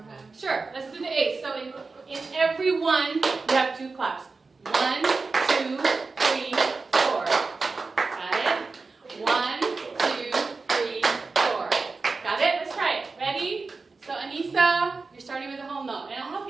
time? Sure, let's do the 8. So in every one, you have 2 claps. 1, 2, 3, 4. Got it? 1, 2, 3, 4. Got it? Let's try it. Ready? So Anissa, you're starting with a whole note. And I'll help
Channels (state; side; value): quieter; left; 4.1 dB